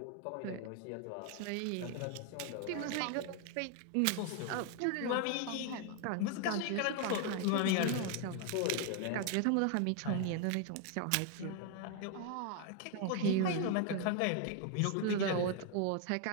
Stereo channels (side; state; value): both; different; correlation 0.00